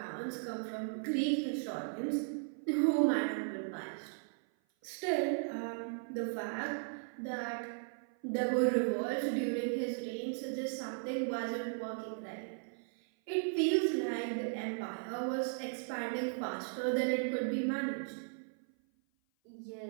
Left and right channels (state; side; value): silent; left; 53 dB below the other